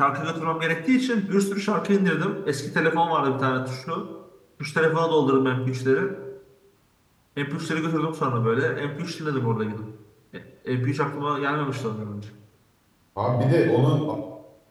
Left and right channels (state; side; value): identical; both; correlation 1.00